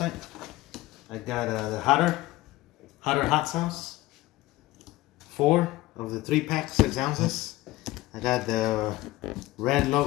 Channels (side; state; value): right; quieter; 17.9 dB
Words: I got the Hotter hot sauce, 4 of the 3-pack, 6 ounces. I got the red